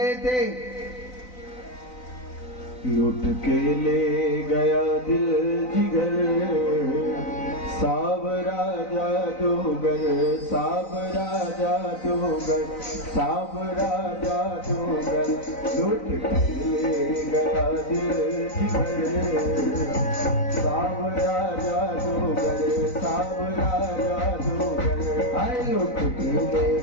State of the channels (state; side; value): late; right; 3.9 ms